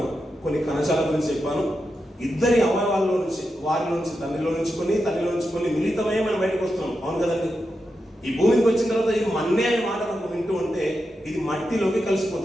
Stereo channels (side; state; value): both; normal; correlation 0.88